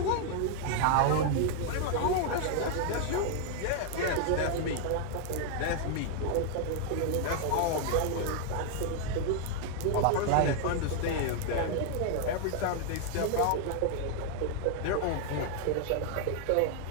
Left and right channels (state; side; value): different; both; correlation 0.00